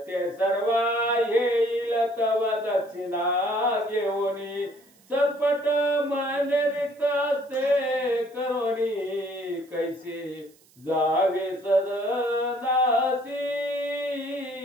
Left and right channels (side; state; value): right; noise; hiss, 30 dB below the sound